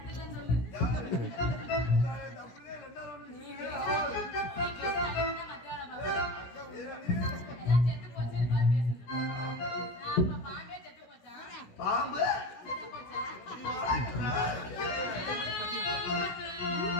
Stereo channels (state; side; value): late; right; 16 ms